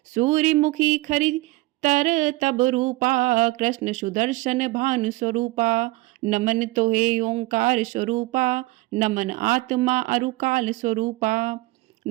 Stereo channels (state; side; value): quieter; left; 21.0 dB